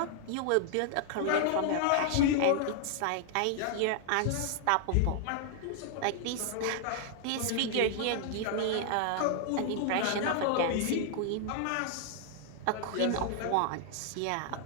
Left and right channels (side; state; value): both; different; correlation 0.00